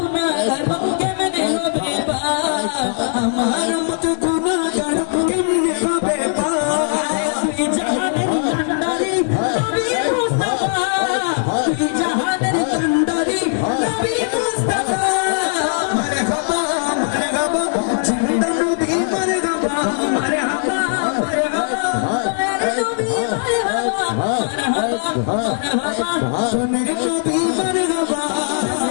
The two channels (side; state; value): right; silent; digital silence